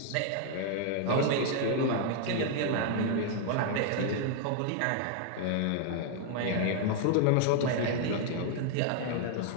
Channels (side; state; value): both; different; correlation 0.00